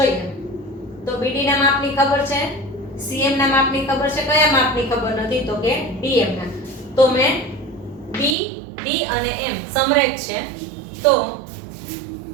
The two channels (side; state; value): left; drops out; at 8.3 s